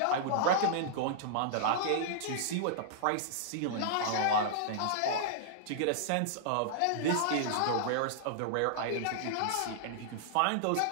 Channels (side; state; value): both; different; correlation -0.01